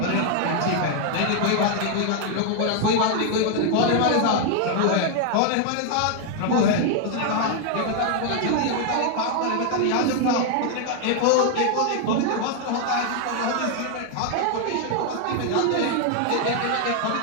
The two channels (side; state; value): both; different; correlation 0.00